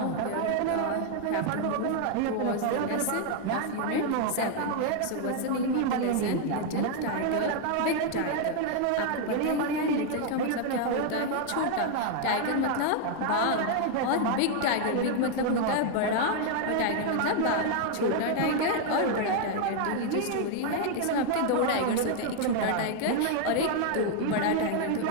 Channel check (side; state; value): both; different; correlation 0.00